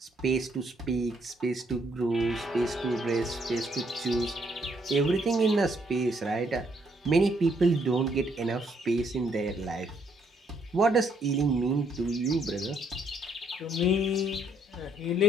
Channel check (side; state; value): both; normal; correlation 0.70